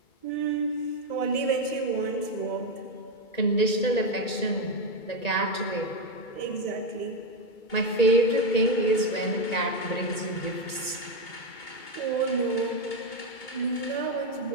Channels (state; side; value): late; right; 1.9 ms